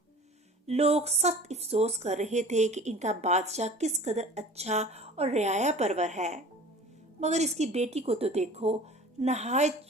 لوگ سخت افسوس کر رہے تھے کہ ان کا بادشاہ کس قدر اچھا اور رعایا پرور ہے، مگر اس کی بیٹی کو تو دیکھو، نہایت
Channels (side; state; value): both; normal; correlation 0.43